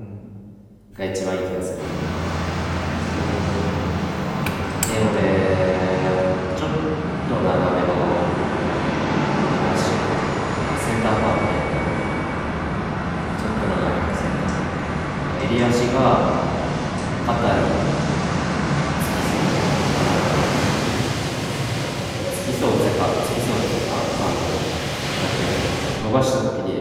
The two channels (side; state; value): both; identical; correlation 1.00